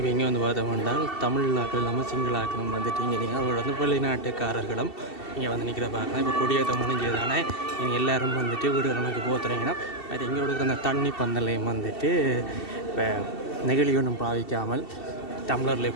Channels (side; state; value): right; late; 2.7 ms